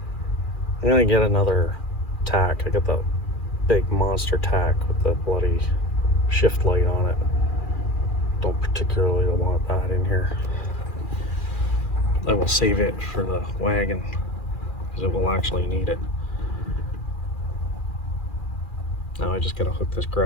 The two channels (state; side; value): late; right; 2.4 ms